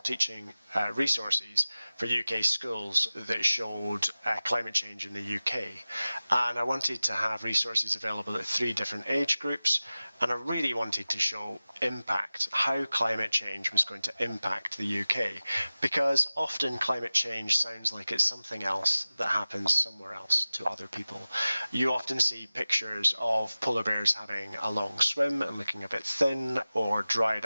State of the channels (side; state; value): both; inverted; correlation -0.96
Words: teaching resources for UK schools that showed climate change in the UK. And I wanted to have resources available at 3 different age groups, and I really wanted to show impact, how climate change was going to impact the UK, because often climate change sounds like it's something else that happens somewhere else to other people. You often see pictures of polar bears having a long swim and looking a bit thin, or